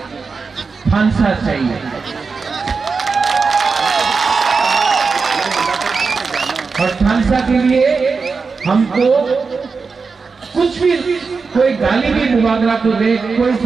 फांसा चाहिए। और फांसा के लिए हमको कुछ भी, कोई गाली भी मुबागरा को दे, कोई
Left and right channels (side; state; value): left; quieter; 4.8 dB